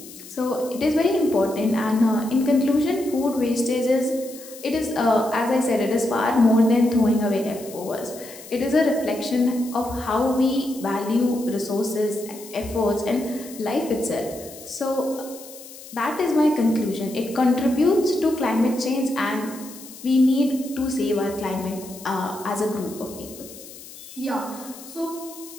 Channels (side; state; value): left; noise; hiss, 17 dB below the sound